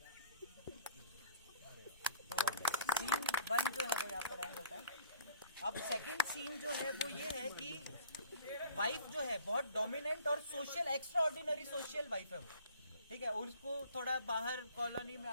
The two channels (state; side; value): inverted; both; correlation -0.50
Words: सीन 1 जो है वो यहाँ पर एंड होता है। अब सेकंड सीन जो है वो ये है कि वाइफ जो है बहुत डोमिनेंट और social, extra ordinary social wife है वो, ठीक है। और उसको थोड़ा बाहर कॉलोनी में